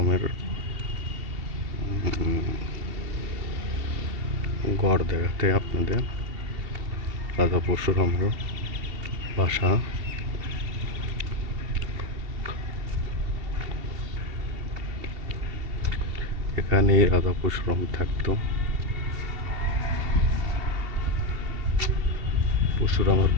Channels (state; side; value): late; left; 2.7 ms